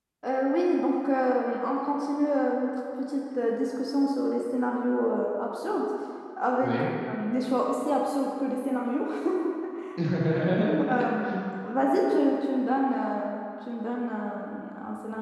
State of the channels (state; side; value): identical; both; correlation 1.00